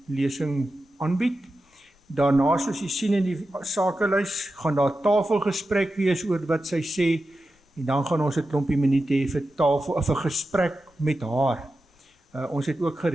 lesing aanbied. Daarna, soos jy sien in die sakelys, gaan daar tafelgesprek wees oor wat sy sê, en dan gaan ons 'n klompie minute hê vir vir gesprek met haar. Ons het ook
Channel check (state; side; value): normal; both; correlation 0.91